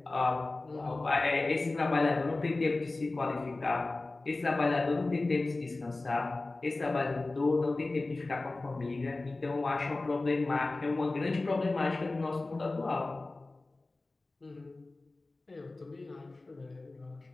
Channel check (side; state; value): right; quieter; 3.2 dB